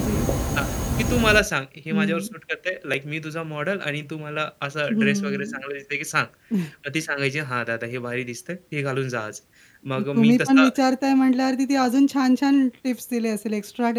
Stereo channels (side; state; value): both; identical; correlation 1.00